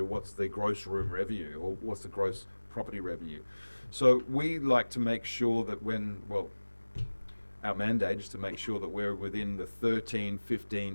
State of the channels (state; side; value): inverted; both; correlation -1.00